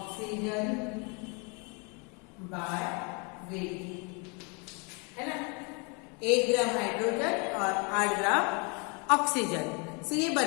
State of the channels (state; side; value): quieter; right; 33.1 dB